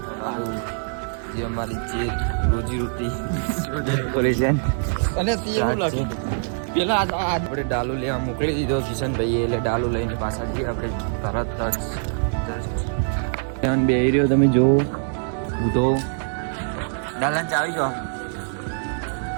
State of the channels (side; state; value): left; silent; 63 dB below the other